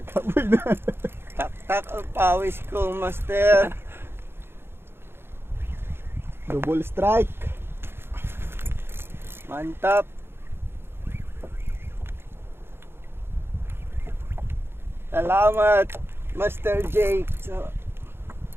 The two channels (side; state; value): left; late; 0.11 ms